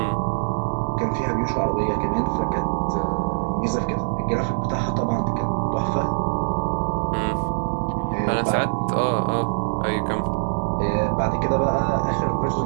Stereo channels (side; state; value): left; silent; digital silence